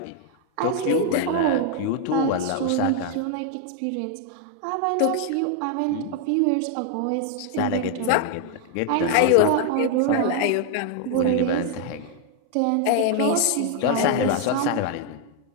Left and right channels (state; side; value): different; both; correlation 0.00